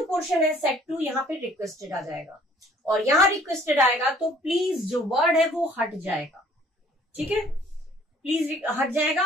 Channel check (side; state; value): both; normal; correlation 0.57